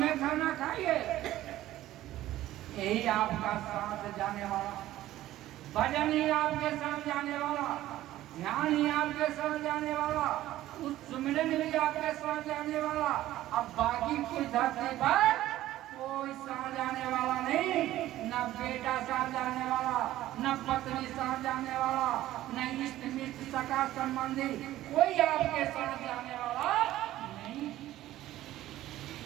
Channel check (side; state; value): left; quieter; 14.6 dB